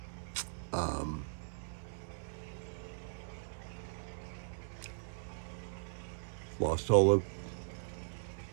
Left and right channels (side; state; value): left; silent; 52 dB below the other